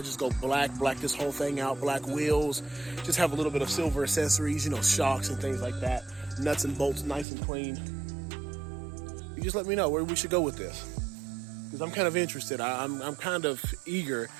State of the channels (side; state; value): left; drops out; at 7.2 s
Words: I just go black this whole thing out, black wheels, just have a little bit of silver accessories, you know, shocks and things like that. Nuts and bolts, nice and clean. You just let me know where we should go with this, because I'm kind of interested. I'm kind of eager